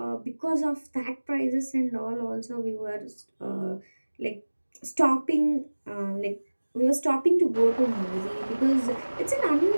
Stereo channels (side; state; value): both; inverted; correlation -1.00